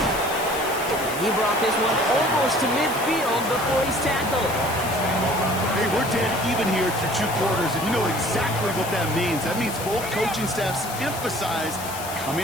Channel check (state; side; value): noise; left; hiss, 10 dB below the sound